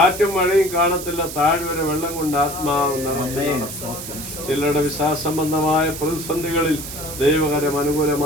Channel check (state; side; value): noise; right; hiss, 9 dB below the sound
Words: മഴയും കാണത്തില്ല, താഴ്വര വെള്ളം കൊണ്ട് ആത്മാവ് നിറച്ചു. ചിലരുടെ വിശ്വാസംബന്ധമായ പ്രതിസന്ധികളിൽ ദൈവകരം